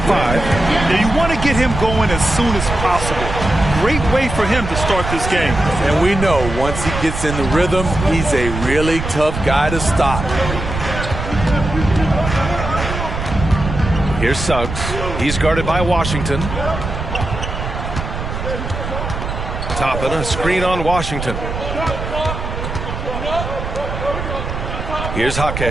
5. Now, you want to get him going as soon as possible. Great way for him to start this game. And we know once he gets in the rhythm, he's a really tough guy to stop. Here's Suggs. He's guarded by Washington. Toppin, a screen on Washington. Here's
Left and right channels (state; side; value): noise; right; rumble, 5 dB below the sound